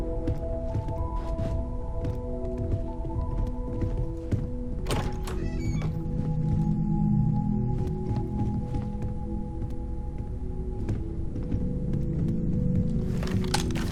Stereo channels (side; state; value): both; identical; correlation 1.00